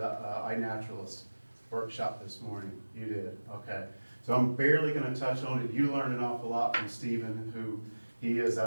iNaturalist workshop this morning? You did, okay. So I'm barely going to touch on it. You learned an awful lot from Stephen, who he is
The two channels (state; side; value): inverted; both; correlation -1.00